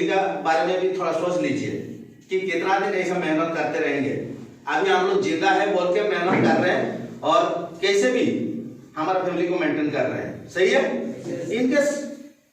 का बारे में भी थोड़ा सोच लीजिए कि कितना दिन ऐसा मेहनत करते रहेंगे। अभी हम लोग जिंदा है बोल के मेहनत कर रहे हैं और कैसे भी हमारा फैमिली को मेंटेन कर रहे हैं, सही है? इनकेस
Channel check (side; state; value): both; identical; correlation 1.00